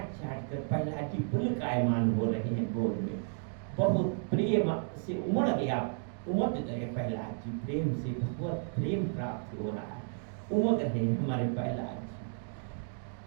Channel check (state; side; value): silent; left; digital silence